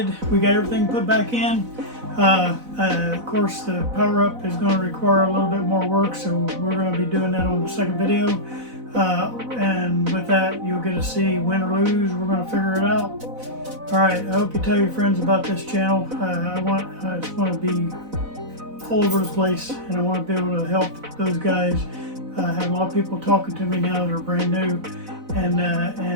We got everything put back in. Of course, the power up is going to require a little bit more work, so we're going to be doing that on the second video. And with that, you'll get to see win or lose. We're going to figure it out. All right. I hope you tell your friends about this channel. I just want to be all over the place, and I want to be able to help those guys. I have a lot of people talking to me now that are brand new, and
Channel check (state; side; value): late; left; 4.0 ms